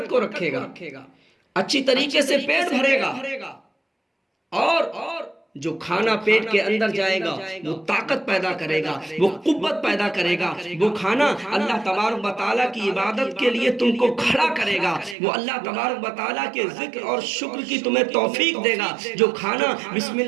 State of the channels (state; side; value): drops out; left; at 15.2 s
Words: کو رکھے گا، اچھی طریقے سے پیٹ بھرے گا، اور جو کھانا پیٹ کے اندر جائے گا وہ طاقت پیدا کرے گا، وہ قوت پیدا کرے گا۔ وہ کھانا اللہ تبارک و تعالیٰ کی عبادت کے لیے تم کو کھڑا کرے گا، وہ اللہ تبارک و تعالیٰ کے ذکر اور شکر کی تمہیں توفیق دے گا۔ جو کھانا بسم